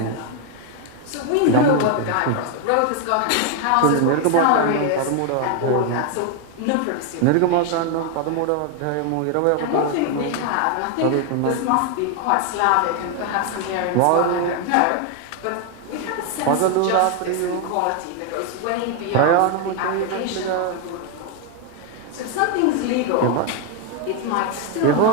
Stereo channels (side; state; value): both; different; correlation 0.01